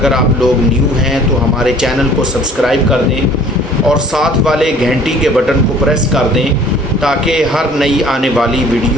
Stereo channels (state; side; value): normal; both; correlation 0.52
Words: آپ لوگ نیو ہیں تو ہمارے چینل کو سبسکرائب کر دیں اور ساتھ والے گھنٹی کے بٹن کو پریس کر دیں تاکہ ہر نئی آنے والی